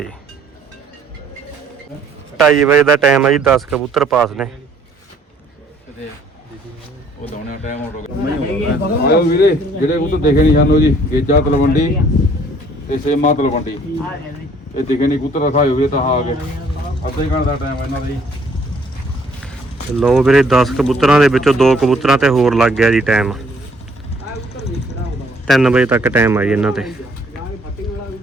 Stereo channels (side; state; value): both; normal; correlation 0.61